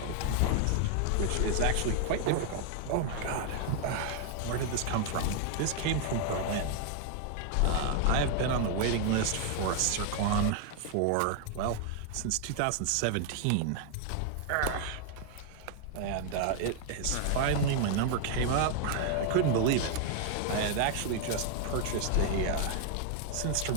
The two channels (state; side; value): different; both; correlation 0.00